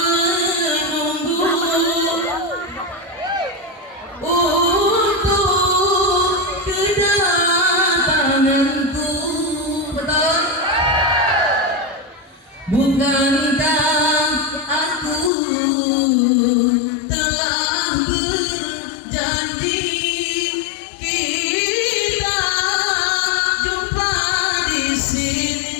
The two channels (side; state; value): right; drops out; at 15.3 s